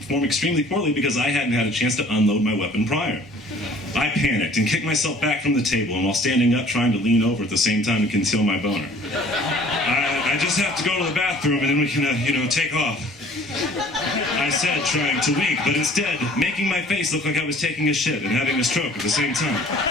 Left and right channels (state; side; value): normal; both; correlation 0.52